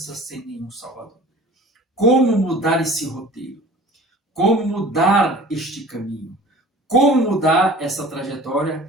sem nenhum salvador. Como mudar esse roteiro? Como mudar este caminho? Como mudar essa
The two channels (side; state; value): both; normal; correlation 0.44